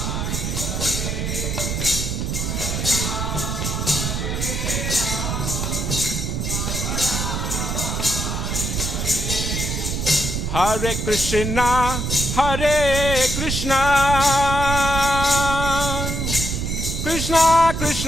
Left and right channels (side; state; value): right; noise; rumble, 2 dB below the sound